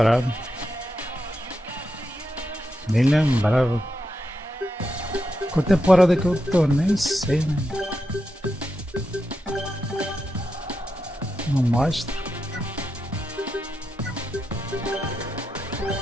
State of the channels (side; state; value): both; normal; correlation 0.86